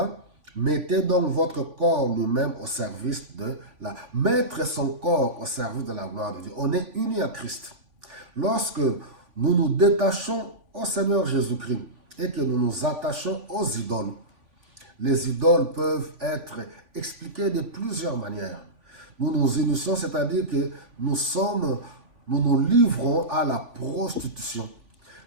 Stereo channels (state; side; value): late; left; 3.5 ms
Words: Mettez donc votre corps lui-même au service de la... Mettre son corps au service de la gloire de Dieu. On est unis à Christ. Lorsque nous nous détachons au Seigneur Jésus-Christ et que nous nous attachons aux idoles, les idoles peuvent être expliquées de plusieurs manières. Nous nous unissons, c'est-à-dire que nous nous livrons à la prostitution.